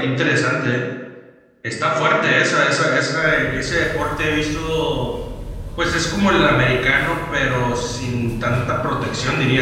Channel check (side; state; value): both; identical; correlation 1.00